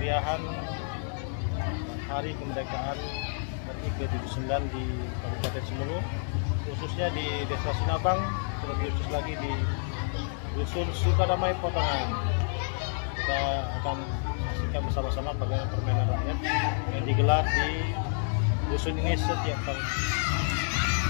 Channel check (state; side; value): silent; right; digital silence